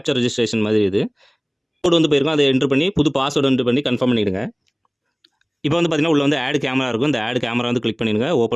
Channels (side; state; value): both; identical; correlation 1.00